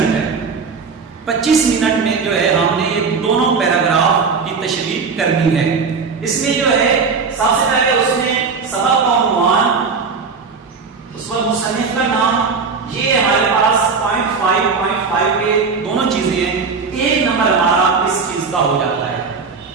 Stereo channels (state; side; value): quieter; left; 5.1 dB